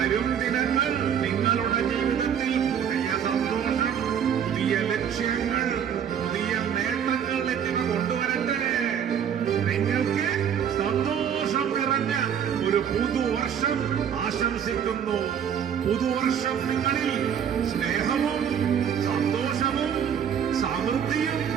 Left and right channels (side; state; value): left; quieter; 8.4 dB